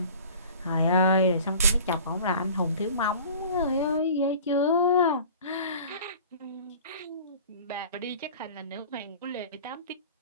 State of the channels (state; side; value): inverted; both; correlation -0.43